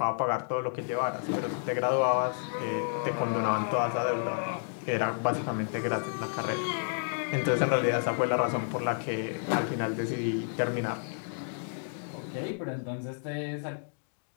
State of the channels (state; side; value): silent; right; digital silence